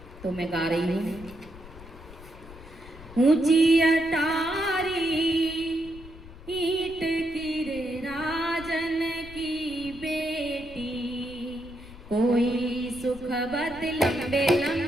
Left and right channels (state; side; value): noise; left; rumble, 17 dB below the sound